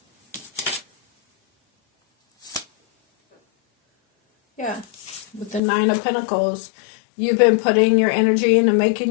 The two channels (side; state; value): right; drops out; at 5.6 s